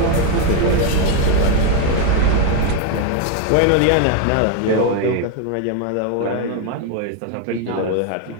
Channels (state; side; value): different; both; correlation 0.01